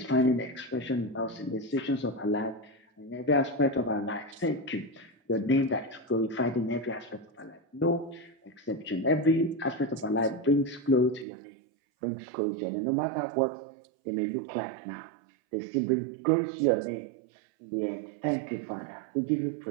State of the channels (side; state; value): left; drops out; at 11.2 s